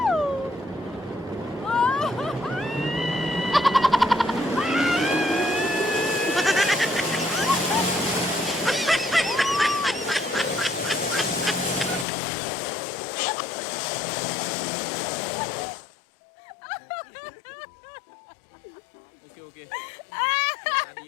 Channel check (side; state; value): right; drops out; at 12.1 s